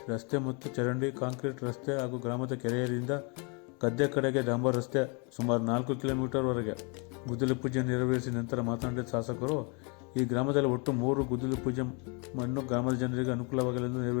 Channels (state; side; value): quieter; right; 33.7 dB